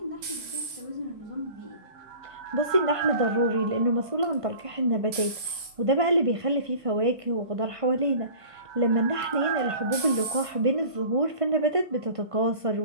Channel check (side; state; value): left; late; 1.6 ms